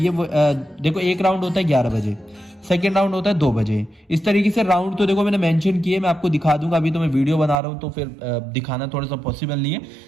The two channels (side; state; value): left; drops out; at 7.6 s